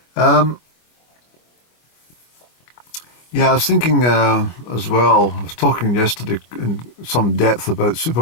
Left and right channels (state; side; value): late; right; 25 ms